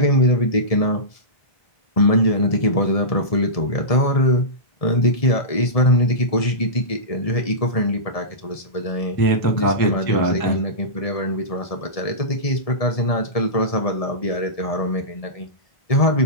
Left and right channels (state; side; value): late; right; 1.7 ms